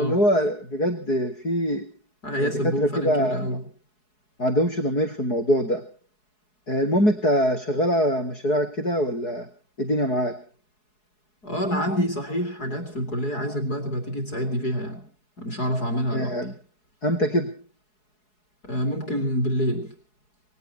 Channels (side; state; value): right; late; 4.7 ms